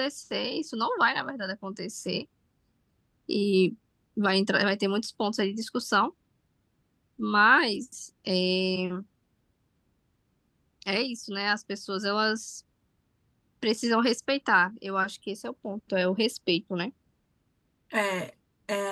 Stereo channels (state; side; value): identical; both; correlation 1.00